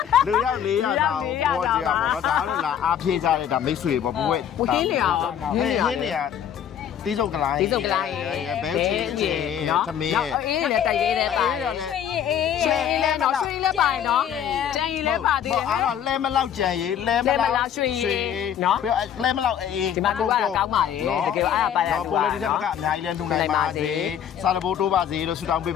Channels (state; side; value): quieter; right; 9.3 dB